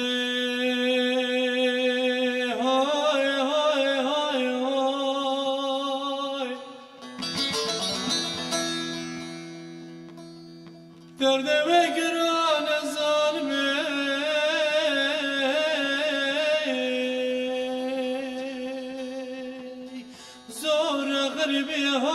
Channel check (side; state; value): both; identical; correlation 1.00